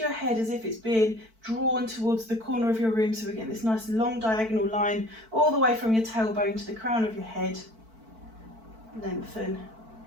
head as if it's being drawn towards the corner of your room. So we're getting this nice long diagonal line all the way from your tailbone to the crown of your head. Lengthen.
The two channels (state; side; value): late; left; 4.5 ms